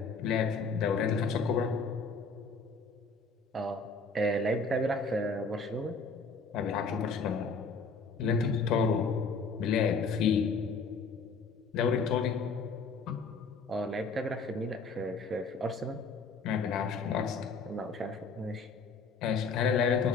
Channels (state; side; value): quieter; right; 4.3 dB